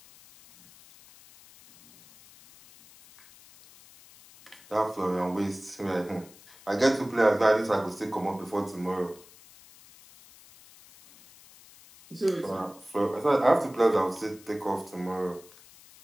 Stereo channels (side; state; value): left; noise; hiss, 23 dB below the sound